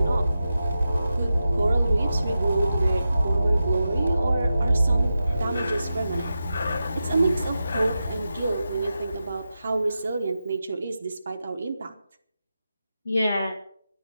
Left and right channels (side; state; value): both; inverted; correlation -0.90